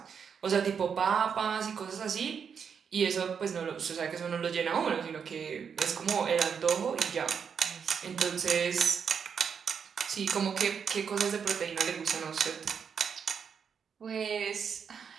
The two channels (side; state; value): left; quieter; 6.8 dB